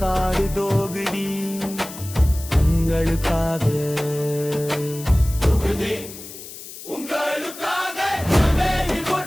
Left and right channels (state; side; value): noise; left; hiss, 14 dB below the sound